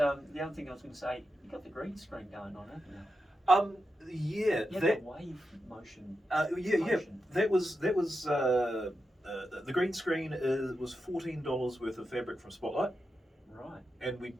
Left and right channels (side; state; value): both; normal; correlation 0.88